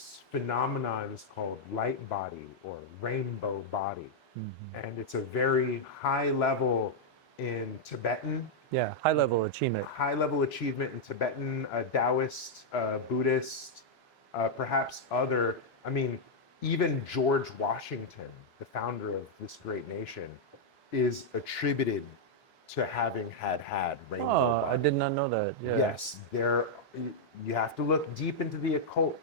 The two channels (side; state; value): both; normal; correlation -0.04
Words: phenomenon is called light body or rainbow body. And it's a very high level in Tibetan, Yeah. High level achievement. high level achievement in Tibetan, Taoist, Buddhist, perhaps other. I mean, even George Washington, the founder of this great nation, is attributed to having had rainbow Oh, I body. did not know that. Yeah. Yes, there. You have to look deep into the